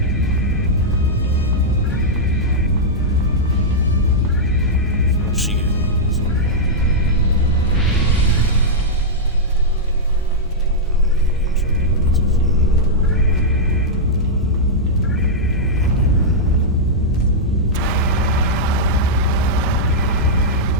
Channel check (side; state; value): both; normal; correlation -0.08